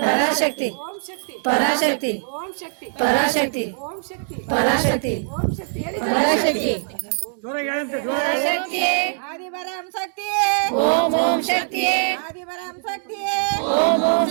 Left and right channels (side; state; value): left; silent; digital silence